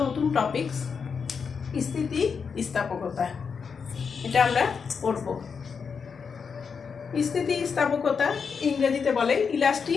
নতুন টপিকস, স্থিতিস্থাপকতা, এটা আমরা পড়ব। স্থিতিস্থাপকতা ইংরেজিতে বলে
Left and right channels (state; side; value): quieter; right; 5.9 dB